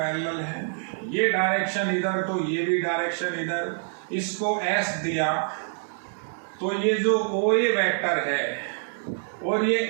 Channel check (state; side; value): silent; left; digital silence